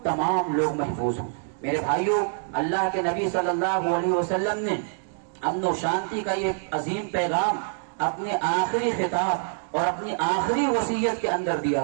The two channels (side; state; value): left; silent; digital silence